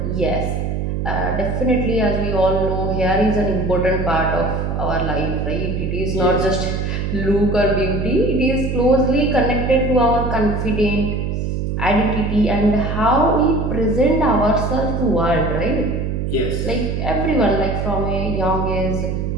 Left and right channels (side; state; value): right; noise; hum, 1 dB below the sound